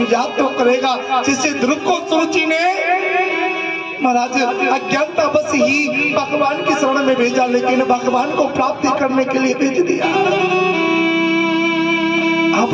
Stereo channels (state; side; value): identical; both; correlation 1.00